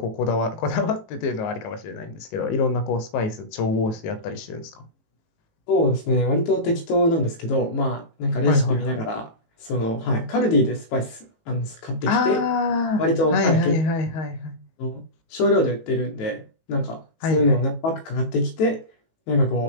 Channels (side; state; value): right; late; 18 ms